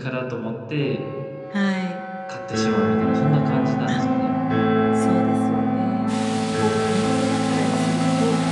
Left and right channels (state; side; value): identical; both; correlation 1.00